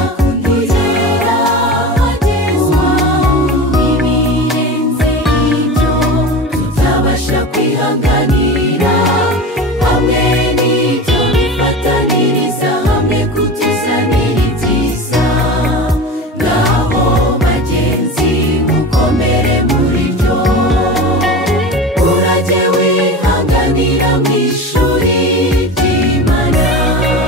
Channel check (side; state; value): both; normal; correlation 0.30